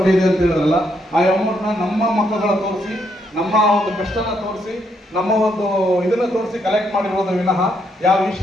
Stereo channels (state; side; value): normal; both; correlation 0.75